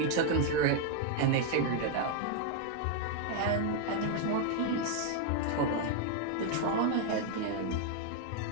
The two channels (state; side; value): different; both; correlation 0.00